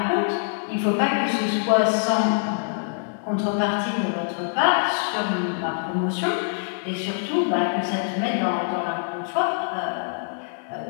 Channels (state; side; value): silent; right; digital silence